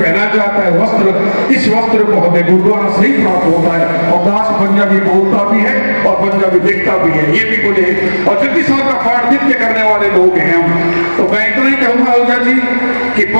जाता है वस्त्र, इस वस्त्र को हमें गुरुद्वारा से ही प्राप्त होता है। और दास पंजाबी बोलता भी है और पंजाबी दिखता भी है, ये भी बोले। और जगदीश साहब का पाठ नित्य करने वाले लोग हैं हम। तो मैं इतना ही कहूँगा आहूजा जी कि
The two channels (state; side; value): inverted; both; correlation -1.00